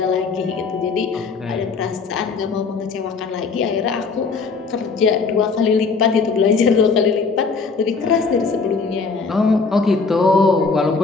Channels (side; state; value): right; quieter; 4.7 dB